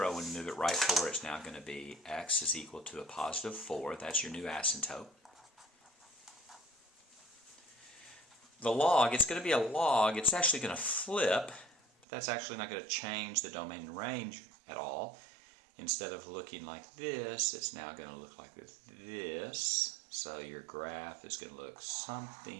When you move it right 4, it's now going to be x is equal to a positive 4. That's your new asymptote. The log, it's going to be a log. It's actually going to flip, but that's actually not going to change the domain and range at all. Instead of looking like this, it's now going to look like this. So your graph is going to look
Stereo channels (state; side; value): drops out; left; at 12.1 s